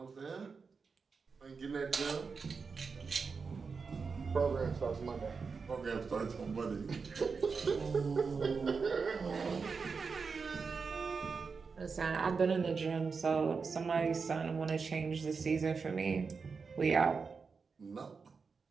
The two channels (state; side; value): quieter; left; 5.1 dB